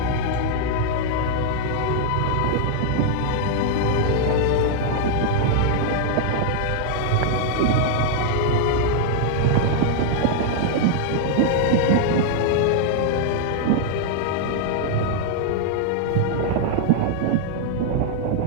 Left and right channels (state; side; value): different; both; correlation 0.00